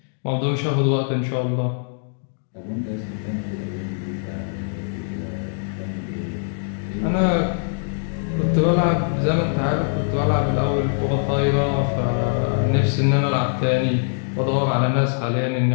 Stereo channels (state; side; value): silent; right; digital silence